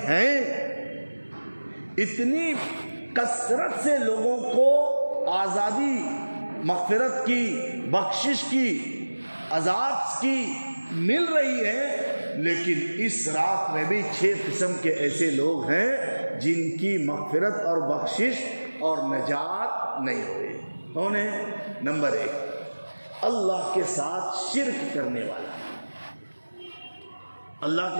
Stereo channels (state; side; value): inverted; both; correlation -1.00